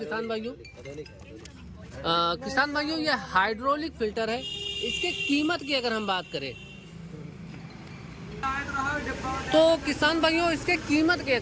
भाइयों। किसान भाइयों, ये हाइड्रोलिक फिल्टर है। इसके कीमत की अगर हम बात करें तो किसान भाइयों, इसके कीमत की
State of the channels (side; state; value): both; identical; correlation 1.00